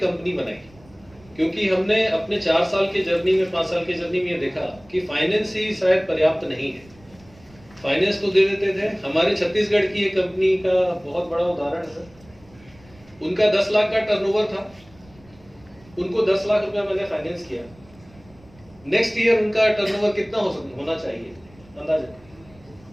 कंपनी बनाई, क्योंकि हमने अपने 4 साल के जर्नी में, 5 साल के जर्नी में ये देखा कि फाइनेंस ही शायद पर्याप्त नहीं है। फाइनेंस तो दे देते थे। हमारे छत्तीसगढ़ की एक कंपनी का बहुत बड़ा उदाहरण है। उनका 10 लाख का टर्नओवर था, उनको 10 लाख रुपया मैंने फाइनेंस किया। नेक्स्ट ईयर उनका टर्नओवर कितना होना चाहिए अंदाजा?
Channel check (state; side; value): noise; right; rumble, 26 dB below the sound